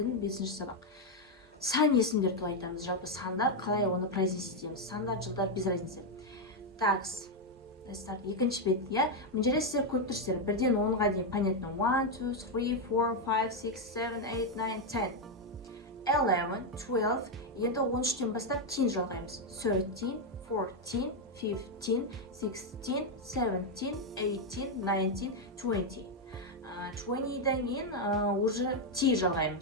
5-ші сабақ. Сан есімдер туралы айтамыз. Жалпы сандар қалай оны произнести етеміз. Сандар, жылдар без разницы. Так, let's start. Екінші бет, иә. Мына жерде сіздер көріп тұрсыздар. 1-ден 10-ға дейін понятно. 1, 2, 3, 4, 5, 6, 7, 8, 9, 10. 11, 12. Енді 13-тен бастап 10 жалғаймыз. 13, 14, 15, 16, 17, 18, 19, 20. 20-дан кейін уже 10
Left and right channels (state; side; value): normal; both; correlation 0.03